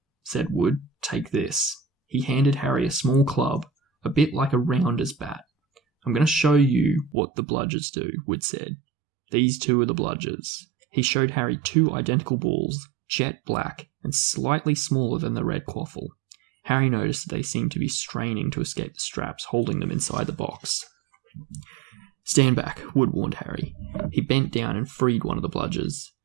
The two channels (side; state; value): left; drops out; at 7.2 s